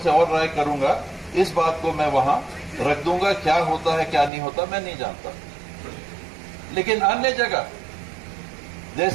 और राय करूंगा। इस बात को मैं वहां रख दूंगा। क्या होता है क्या नहीं होता मैं नहीं जानता। लेकिन अन्य जगह,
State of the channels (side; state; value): left; drops out; at 4.3 s